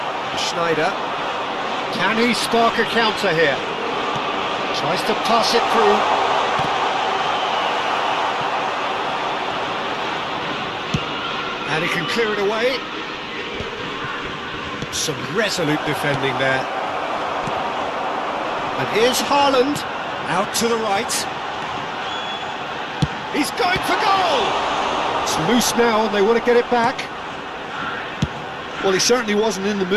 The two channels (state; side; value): identical; both; correlation 1.00